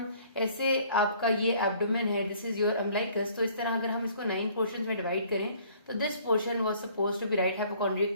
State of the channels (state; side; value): inverted; both; correlation -0.57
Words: ऐसे, आपका ये एब्डोमेन है, दिस इज योर अम्बलाइकस, तो इस तरह अगर हम इसको 9 पोर्शंस में डिवाइड करें तो this portion was suppose to be right